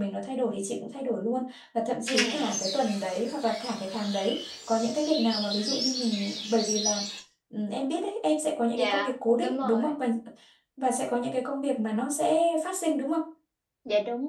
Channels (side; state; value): both; identical; correlation 1.00